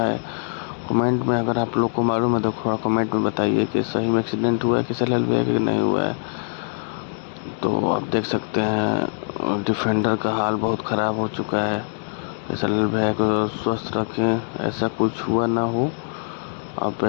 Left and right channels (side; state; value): right; silent; digital silence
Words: कमेंट में अगर आप लोग को मालूम है तो थोड़ा कमेंट में बताइए कि सही में एक्सीडेंट हुआ है किशन है कि नहीं हुआ है। तो आप देख सकते हैं डिफेंडर का हाल बहुत ख़राब हो चुका है। किशन भैया को स्वस्थ रखें, ऐसा कुछ हुआ ना हो। अब